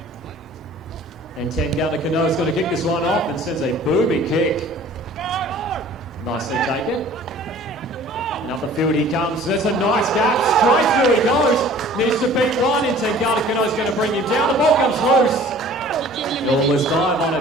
And Tengata Kano is going to kick this one off and sends a booming kick. Nicely taken. Up the field he comes. There's a nice gap. Straight through he goes. Needs to beat one in. Tengata Kano is going to bring him down. The ball comes loose. Almost dive on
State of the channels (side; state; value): both; normal; correlation 0.49